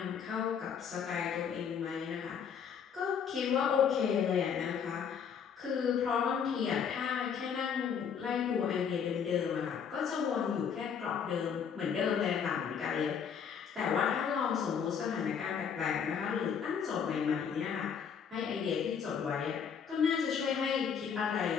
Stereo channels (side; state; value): right; quieter; 7.2 dB